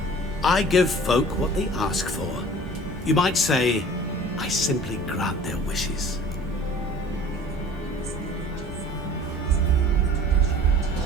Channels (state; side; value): normal; both; correlation 0.45